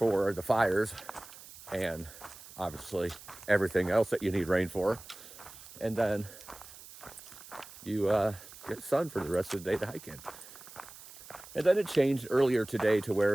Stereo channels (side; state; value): right; noise; hiss, 17 dB below the sound